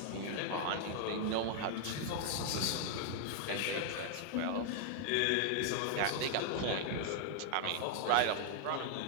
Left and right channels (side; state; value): both; different; correlation 0.00